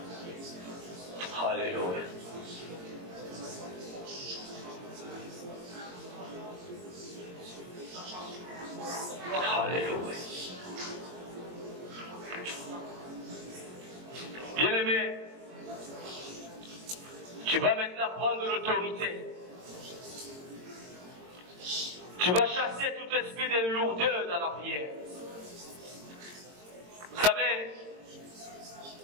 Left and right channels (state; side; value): late; left; 22 ms